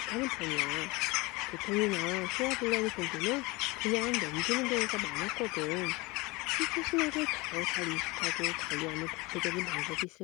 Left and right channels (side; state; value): right; quieter; 24.0 dB